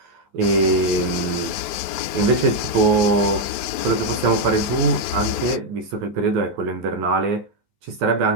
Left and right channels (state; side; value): late; left; 12 ms